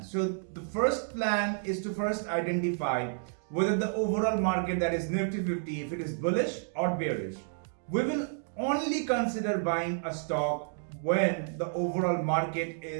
the first plan is to first identify whether the overall market, that is Nifty 50, if it is bullish or bearish. We will only consider buying a stock when the overall market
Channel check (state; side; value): silent; left; digital silence